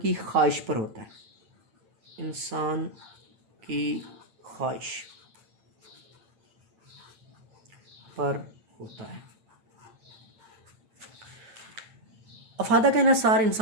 خواہش پر ہوتا ہے، انسان کی خواہش پر ہوتا ہے۔ افادہ کا انحصار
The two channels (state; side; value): late; left; 9.3 ms